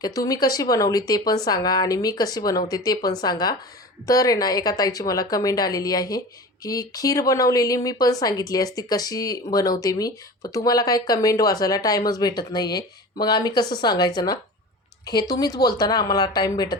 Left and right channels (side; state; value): both; normal; correlation 0.34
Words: की तुम्ही कशी बनवली ते पण सांगा आणि मी कशी बनवते ते पण सांगा. तर आहे ना एका ताईची मला कमेंट आलेली आहे, की खीर बनवलेली मी पण सांगितली असती कशी बनवते मी, पण तुम्हाला काही कमेंट वाचायला टाईमच भेटत नाही आहे. मग आम्ही कसं सांगायचं ना? हे तुम्हीच बोलता ना आम्हाला टाईम